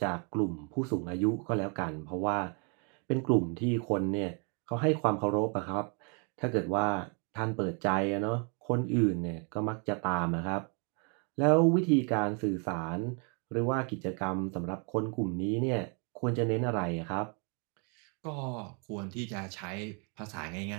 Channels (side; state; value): left; quieter; 36.9 dB